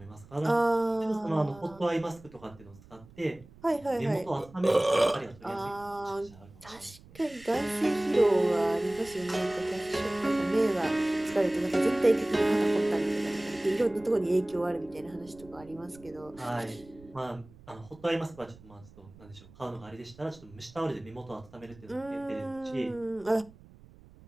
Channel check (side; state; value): right; noise; rumble, 23 dB below the sound